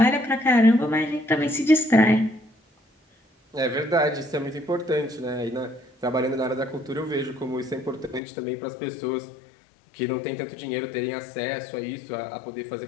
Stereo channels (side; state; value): right; drops out; at 8.2 s